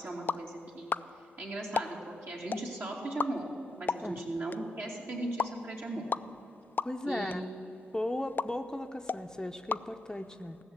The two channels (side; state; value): both; normal; correlation 0.83